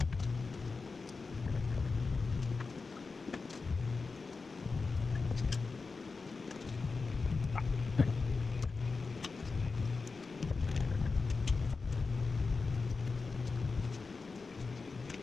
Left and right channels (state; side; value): quieter; right; 4.3 dB